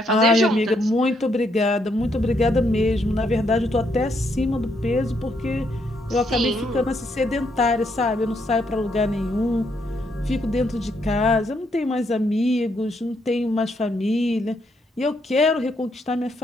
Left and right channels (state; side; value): normal; both; correlation 0.75